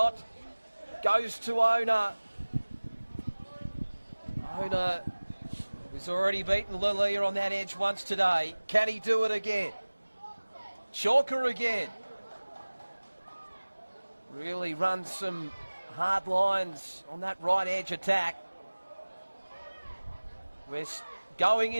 goes to Ona. Ona, who's already beaten Lalia on that edge once today. Can he do it again? Chalker again. Really runs some hard lines on that right edge attack. We're going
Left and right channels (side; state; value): both; inverted; correlation -1.00